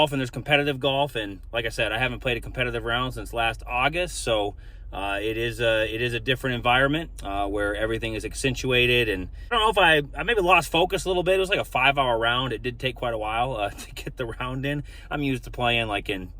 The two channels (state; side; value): identical; both; correlation 1.00